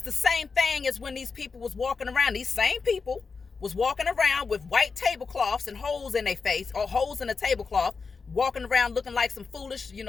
the same thing as when these people was walking around. These same people was walking around with white tablecloths and holes in their face, or holes in the tablecloth, walking around looking like some foolish,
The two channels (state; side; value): quieter; right; 4.9 dB